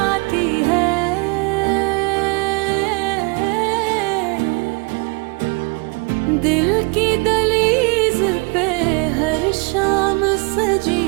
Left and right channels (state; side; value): quieter; left; 29.5 dB